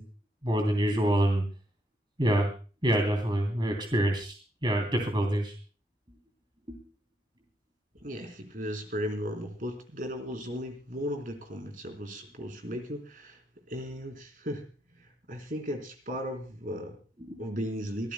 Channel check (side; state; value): both; normal; correlation 0.76